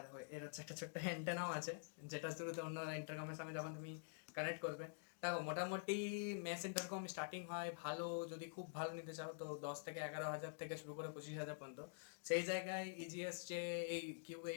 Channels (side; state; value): right; silent; digital silence